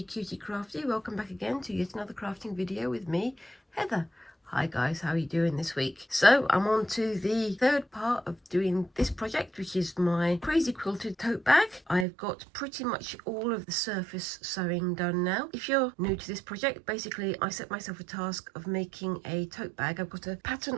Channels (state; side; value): drops out; left; at 12.1 s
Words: Cutie Crafty. Welcome back again to yet another crafting video with me, Heather. Hi guys, how are you doing this week? So I'm on to the third part of doing this project, which is my crazy quilted tote bag. I've got pretty much all of the surface sewing done now. If you're new to this project, basically I set myself a task of making a tote bag. I've got a